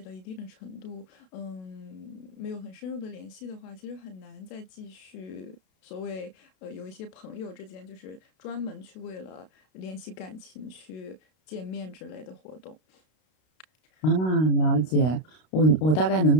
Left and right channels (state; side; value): late; right; 32 ms